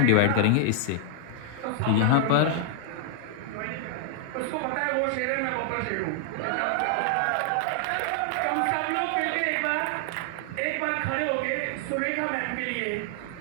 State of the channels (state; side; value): different; both; correlation 0.00